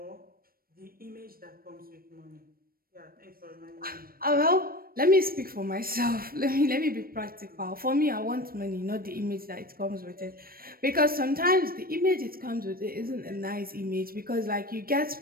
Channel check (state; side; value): late; left; 0.43 ms